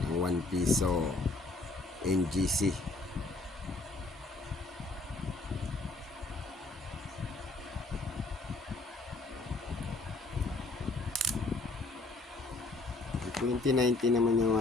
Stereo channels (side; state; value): right; quieter; 3.2 dB